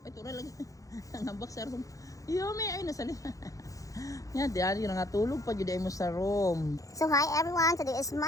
Ay, tura lagi. Nangambak sa room. Yumi, ay, nasali. Yan, diyan yung natulog pa yun mo sa room. So hi everyone, today is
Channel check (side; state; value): right; late; 0.16 ms